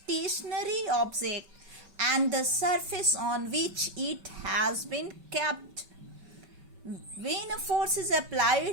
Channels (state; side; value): late; left; 5.2 ms